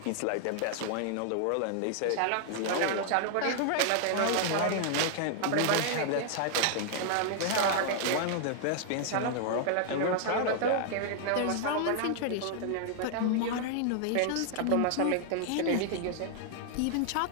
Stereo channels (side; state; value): both; different; correlation 0.00